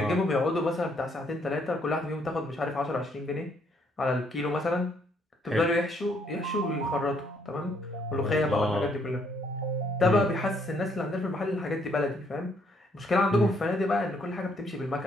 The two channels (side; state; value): both; normal; correlation 0.69